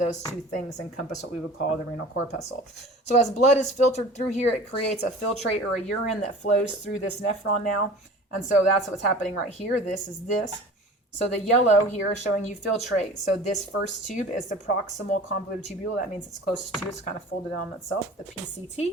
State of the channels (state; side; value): normal; both; correlation 0.41